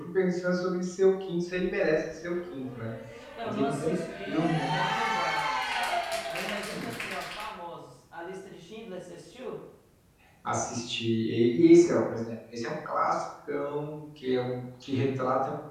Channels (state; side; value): identical; both; correlation 1.00